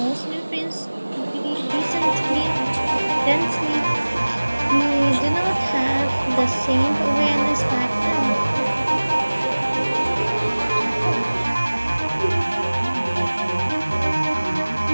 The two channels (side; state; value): both; inverted; correlation -1.00